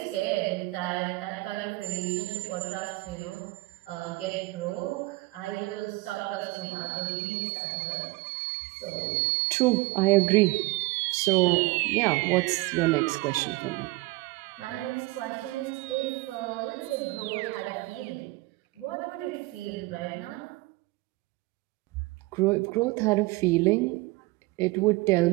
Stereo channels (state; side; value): quieter; left; 22.4 dB